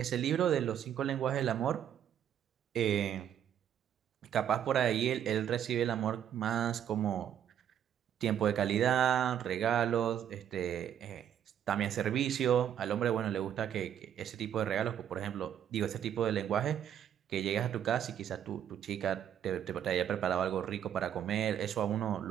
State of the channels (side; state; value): left; quieter; 9.7 dB